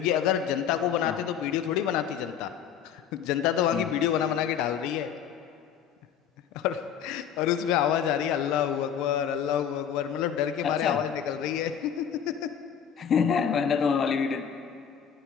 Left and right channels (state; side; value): quieter; right; 8.4 dB